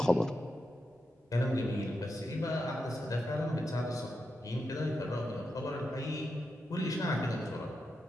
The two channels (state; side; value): normal; both; correlation 0.87